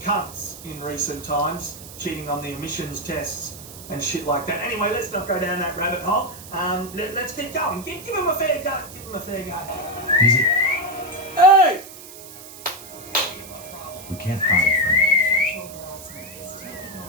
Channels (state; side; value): noise; right; hiss, 15 dB below the sound